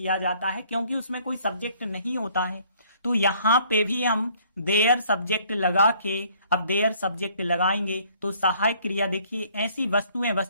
जाता है, क्योंकि उसमें कोई सब्जेक्ट नहीं होता है। तो यहां पे भी हम देयर सब्जेक्ट लगा के, अब देयर सब्जेक्ट लगाएंगे तो सहायक क्रिया, देखिए ऐसी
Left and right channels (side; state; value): both; inverted; correlation -0.61